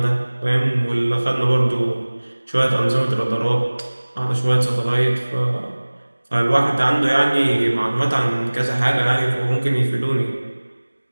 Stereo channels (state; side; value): inverted; both; correlation -1.00